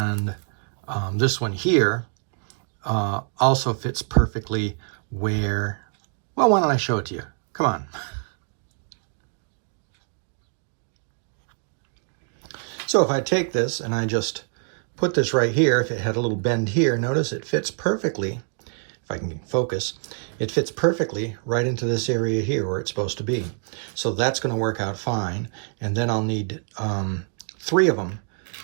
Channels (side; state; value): left; silent; 56 dB below the other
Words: this one here also fits perfectly where, well, why don't I show it to you? Come on. So if I take this and I just put this right here, if it had a little bend here, notice it fits perfectly. If I can focus, it fits perfectly right into this area here where it's supposed to be. So that's going to work out fine. And then I'll need 3 of them